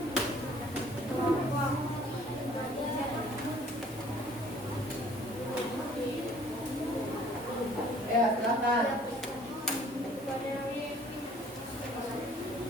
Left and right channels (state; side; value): normal; both; correlation 0.55